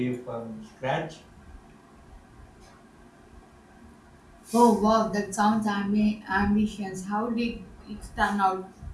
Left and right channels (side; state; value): both; identical; correlation 1.00